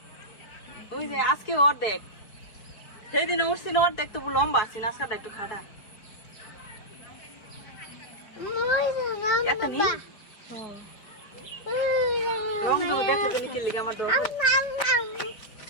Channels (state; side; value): late; right; 5.2 ms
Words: ওই যে আজকে অর্ধেক, সেদিন উঠছি না অর্ধেক, তবু লম্বা আছি, আজকাটা একটু খাটা। রংধনু দেখে তুমি কি লিখে আমার ডর